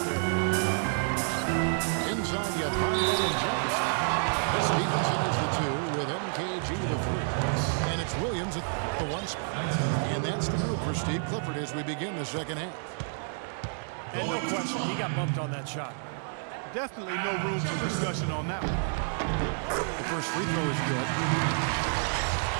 there. Inside, you have Conley and Jefferson. Stevenson is the 2 with MKG the 3. And it's Williams at the 1 spot. And that's the group for Steve Clifford as we begin the second half. And no question, he got bumped on that shot. Definitely no room for discussion on that one. The first free throw is good.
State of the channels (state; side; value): silent; left; 58 dB below the other